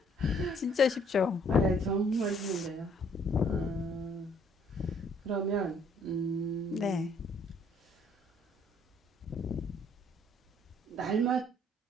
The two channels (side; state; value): both; normal; correlation 0.63